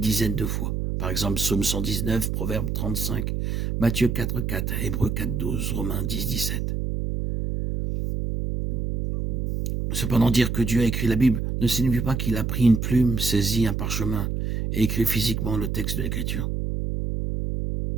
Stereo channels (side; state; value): right; noise; hum, 1 dB below the sound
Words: de fois. Par exemple, Psaume 119, Proverbe 35, Matthieu 4,4, Hébreux 4,12, Romains 10,17. Cependant, dire que Dieu a écrit la Bible ne signifie pas qu'il a pris une plume, saisi un parchemin et écrit physiquement le texte de l'Écriture.